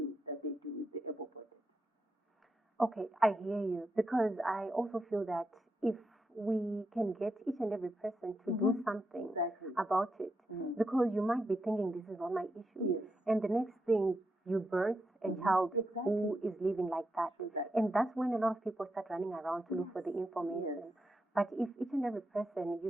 that they do with the able-bodied. Okay, I hear you because I also feel that if we can get each and every person to do something about it, because you might be thinking this is not my issue, and the next thing you birth a child who is living like that, and that's when a lot of people start running around to look for the information. But if each and every person,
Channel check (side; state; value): both; normal; correlation 0.84